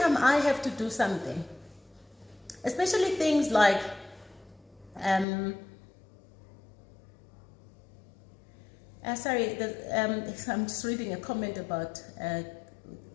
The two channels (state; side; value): drops out; right; at 5.2 s